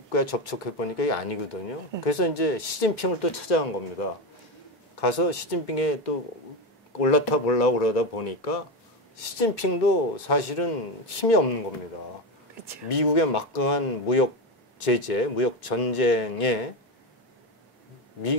접촉해 보니까 이게 아니거든요. 그래서 이제 시진핑을 또 찾아간 겁니다. 가서 시진핑에 또 올라타 보려고 그러다 보니까 시진핑도 사실은 힘이 없는 겁니다. 그렇죠. 미국의 막강한 무역 제재, 무역 전쟁에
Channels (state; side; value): normal; both; correlation 0.16